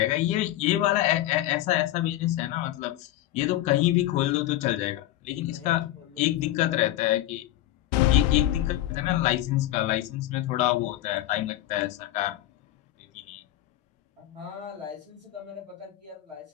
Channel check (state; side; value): quieter; right; 14.5 dB